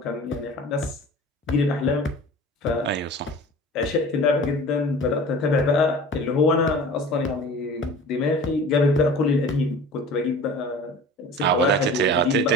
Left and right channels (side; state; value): both; normal; correlation 0.40